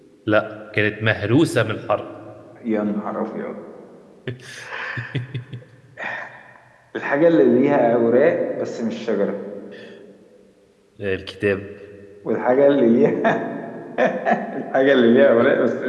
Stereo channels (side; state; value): both; identical; correlation 1.00